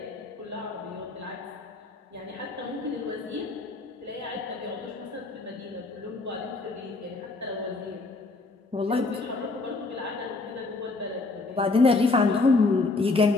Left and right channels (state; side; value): quieter; right; 3.6 dB